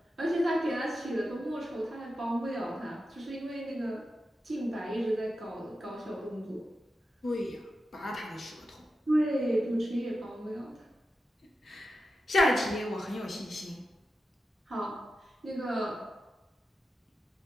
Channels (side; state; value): both; normal; correlation 0.90